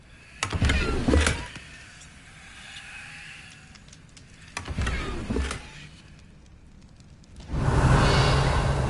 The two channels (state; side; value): identical; both; correlation 1.00